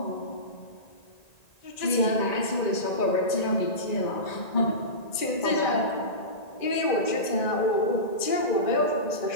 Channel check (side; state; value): right; late; 1.9 ms